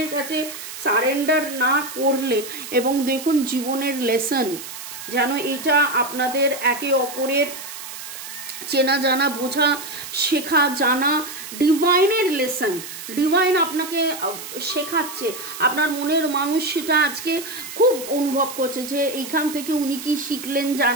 কাছে সারেন্ডার না করলে, এবং দেখুন জীবনের লেসন যেন এটা আপনাদের একে অপরের চেনা জানা, বোঝা, শেখা জানা, ডিভাইনের লেসন, ডিভাইন আপনাকে শেখাচ্ছে। আপনার মনের মানুষ সেটা আজকে খুব অনুভব করছে যে এইখান থেকে উনি কি শিখলেন,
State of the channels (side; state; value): right; noise; hiss, 11 dB below the sound